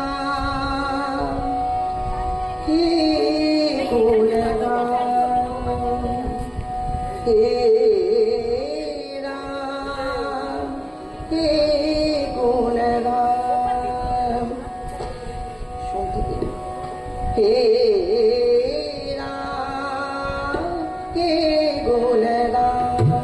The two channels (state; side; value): identical; both; correlation 1.00